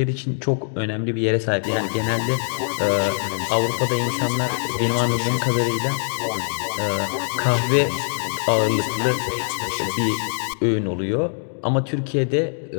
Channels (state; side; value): silent; right; 64 dB below the other